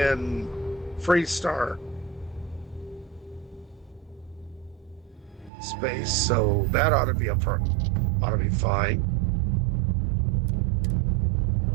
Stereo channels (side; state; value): left; drops out; at 5.5 s